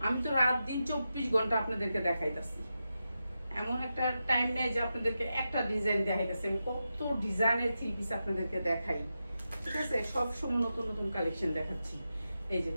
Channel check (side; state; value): both; inverted; correlation -0.90